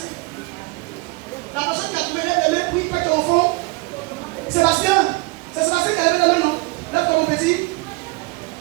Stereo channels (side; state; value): left; quieter; 25.3 dB